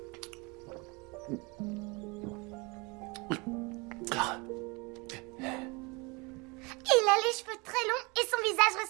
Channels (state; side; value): quieter; left; 27.8 dB